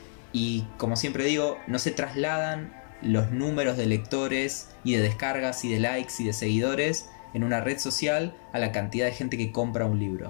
Y como siempre digo, no se trasladan los números de lectores y de descargas y de likes y de seguidores en una red social a la cantidad de gente que compra un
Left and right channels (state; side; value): silent; right; 59 dB below the other